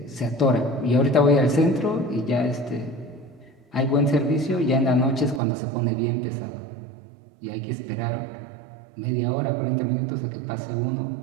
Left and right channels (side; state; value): left; drops out; at 5.4 s